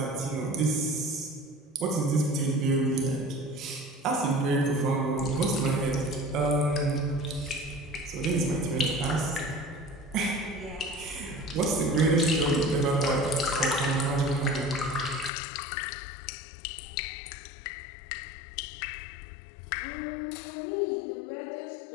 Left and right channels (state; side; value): drops out; right; at 15.3 s